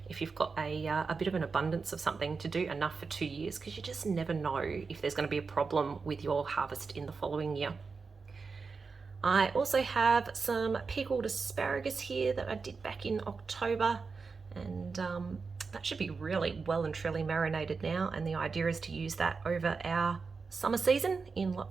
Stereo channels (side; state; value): left; quieter; 4.8 dB